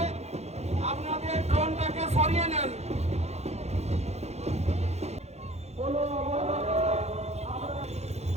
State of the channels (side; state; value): left; late; 0.31 ms